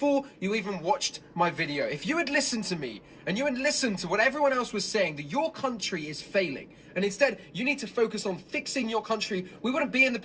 you even watched my video. If you had listened to me, and you had listened to what everyone else was saying, that your country is failing, and instead you need to focus on fixing your country, we wouldn't be in the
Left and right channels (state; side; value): identical; both; correlation 1.00